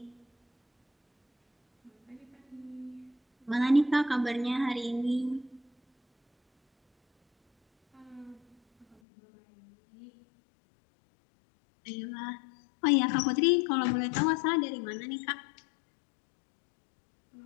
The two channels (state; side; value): drops out; right; at 9.0 s